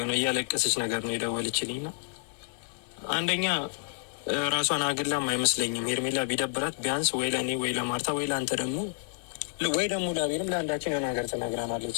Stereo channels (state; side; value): silent; right; 58 dB below the other